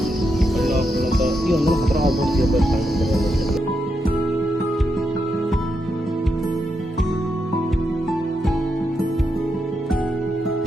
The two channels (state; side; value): normal; both; correlation 0.83